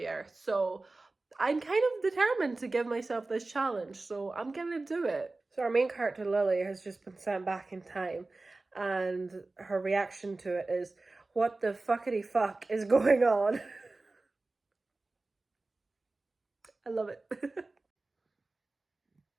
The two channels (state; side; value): quieter; left; 3.3 dB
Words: So I'm kind of determined to give myself this challenge, so I'm gonna do it. So our main character, Lily, has just been sent back in time, and her reaction to it is, what the fuckity fuck is going on? I love it.